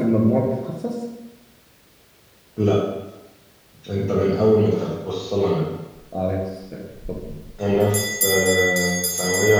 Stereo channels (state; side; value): identical; both; correlation 1.00